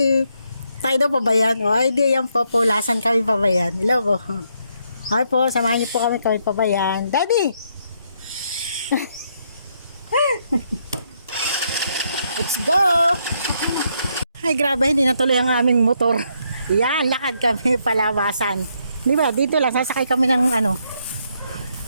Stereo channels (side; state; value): both; inverted; correlation -0.75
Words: Tayo daw pabayan. O ay di yan po. Pulasan kami pabayan. Hello po. Ay po. Samahan niyo po kami pabayan. Daddy! Let's go! Ay grabe. Hindi natuloy ang aming motor. Yan. Lakad kami palabasan. Di ba? Dito lang. Sasakay kami ng ano.